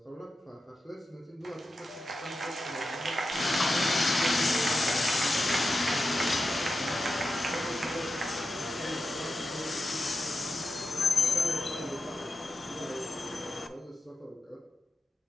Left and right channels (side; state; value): both; normal; correlation 0.90